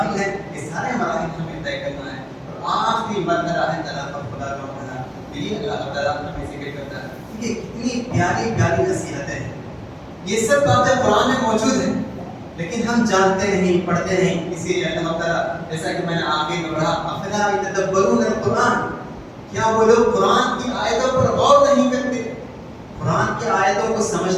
ہیں یہ سارے مراحل ہمیں طے کرنا ہے، اور آخری مرحلہ ہے طلاق اور خلا کا مرحلہ، یہ اللہ تعالیٰ ہمیں ذکر کرتا ہے۔ یہ کتنی پیاری پیاری نصیحتیں ہیں، یہ سب باتیں قرآن میں موجود ہیں لیکن ہم جانتے نہیں، پڑھتے نہیں، اسی لیے اللہ تعالیٰ جیسا کہ میں نے آگے میں پڑھا افلا یتدبرون القرآن، کیا وہ لوگ قرآن کی آیتوں پر غور نہیں کرتے، قرآن کی آیتوں کو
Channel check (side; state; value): both; identical; correlation 1.00